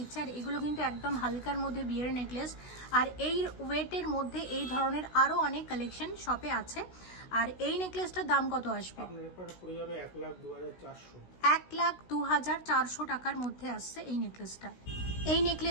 আর এগুলো কিন্তু একদম হালকার মধ্যে বিয়ের নেকলেস। আর এই ওয়েটের মধ্যে এই ধরনের আরও অনেক কালেকশন শপে আছে। আর এই নেকলেসটার দাম কত আসবে? 1,02,400 টাকার মধ্যে আসছে এই নেকলেসটা। এই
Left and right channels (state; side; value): late; right; 16 ms